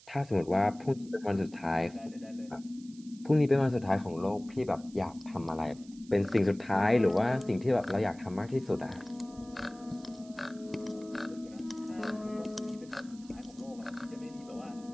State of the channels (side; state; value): right; noise; hiss, 24 dB below the sound